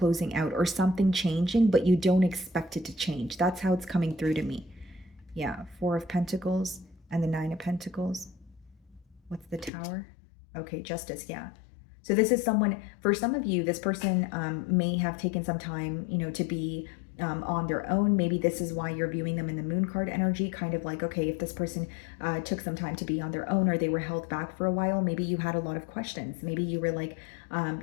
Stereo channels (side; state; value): right; drops out; at 9.7 s